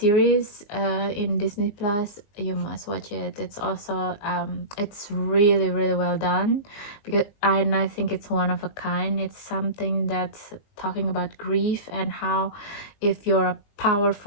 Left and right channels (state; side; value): late; right; 20 ms